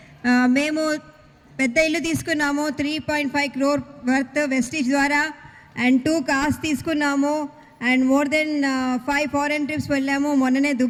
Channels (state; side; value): identical; both; correlation 1.00